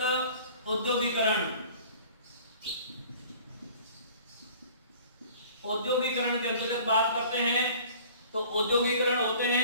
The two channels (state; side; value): inverted; both; correlation -0.48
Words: औद्योगिकीकरण। औद्योगिकीकरण के अंतर्गत बात करते हैं तो औद्योगिकीकरण होते